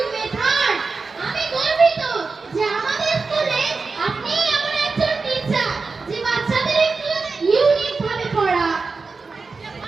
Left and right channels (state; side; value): quieter; left; 4.3 dB